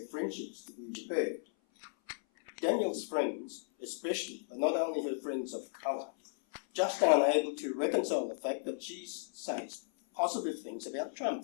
friendships to be repaired. Danielle's friends, especially, but not only her friends of colour, just aren't able to reconcile the fact that she says positive things about Trump.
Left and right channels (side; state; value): right; silent; 54 dB below the other